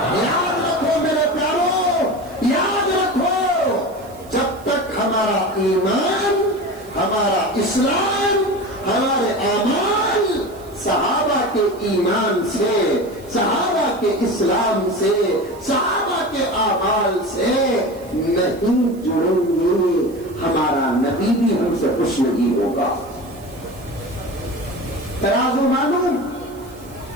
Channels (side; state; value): right; noise; hiss, 25 dB below the sound